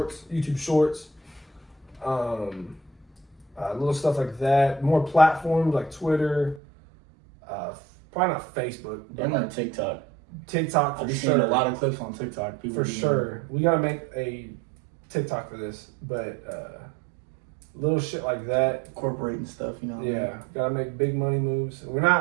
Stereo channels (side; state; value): left; drops out; at 6.6 s